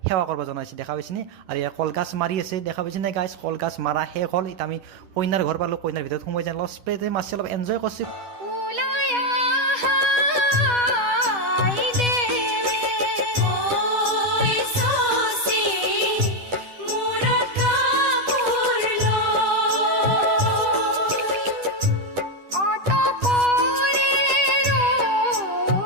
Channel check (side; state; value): left; late; 10 ms